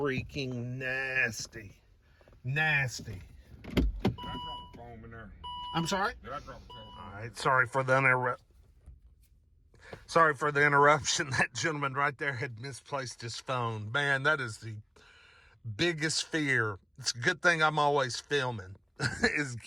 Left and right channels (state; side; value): identical; both; correlation 1.00